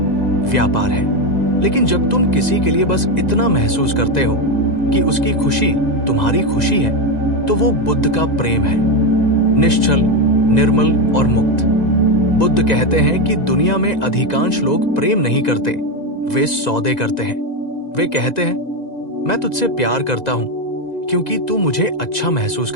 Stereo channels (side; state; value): right; late; 2.0 ms